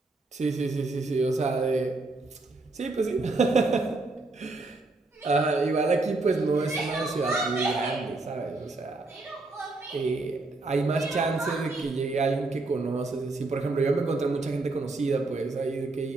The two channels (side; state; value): left; quieter; 3.3 dB